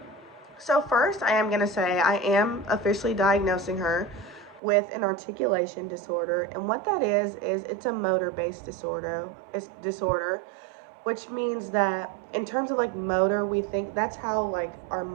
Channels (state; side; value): drops out; left; at 4.6 s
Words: so first, I am going to say I am officially diagnosing her with an articulation disorder. And what that is it's a motor-based disorder. It's disorder, which means that in terms of like motor, we think that's how like our